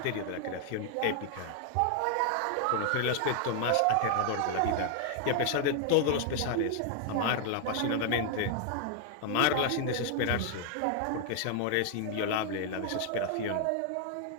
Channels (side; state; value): both; different; correlation 0.00